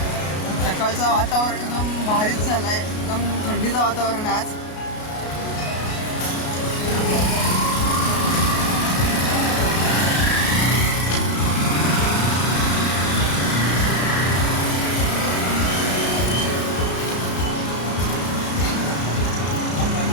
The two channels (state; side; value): late; right; 33 ms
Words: सकाळचं वातावरण एकदम भारीच झालं आहे, एकदम थंडीचं वातावरण आहे आज.